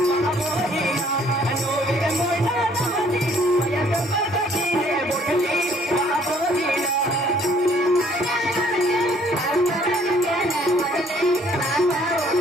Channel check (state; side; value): normal; both; correlation 0.61